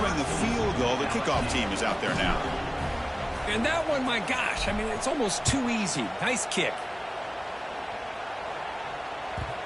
the field goal, the kickoff team is out there now. And that one, my gosh, I mean, it's almost too easy. Nice kick.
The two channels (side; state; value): both; identical; correlation 1.00